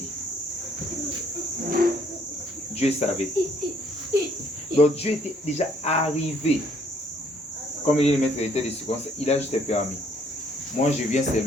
Dieu savait. Donc Dieu était déjà arrivé. Comme il est le maître d'état des circonstances, il a juste permis. Moi, je viens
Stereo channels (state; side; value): normal; both; correlation 0.65